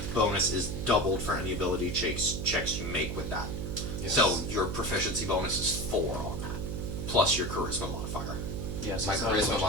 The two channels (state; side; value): noise; right; hum, 4 dB below the sound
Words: bonus is doubled for any ability checks you make with that. Yes. So your proficiency bonus is 4 on that, plus your charisma modifier. yes, My it's not as charisma much as-